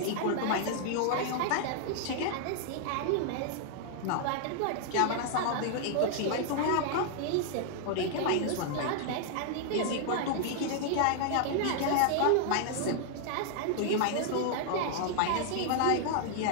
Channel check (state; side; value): different; both; correlation 0.00